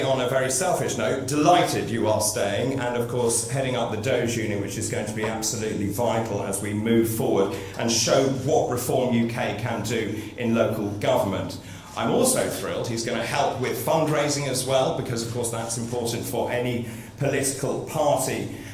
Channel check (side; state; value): both; identical; correlation 1.00